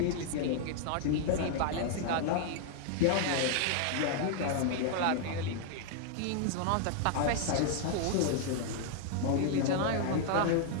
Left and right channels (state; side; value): different; both; correlation 0.00